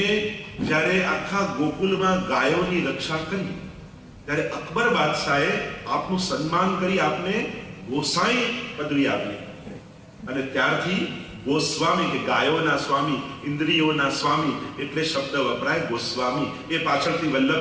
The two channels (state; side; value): identical; both; correlation 1.00